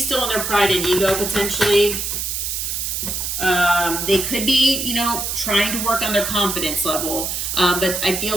in their pride and ego potentially. They could be, you know, trying to work on their confidence level. But I feel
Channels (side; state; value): right; noise; hiss, 2 dB below the sound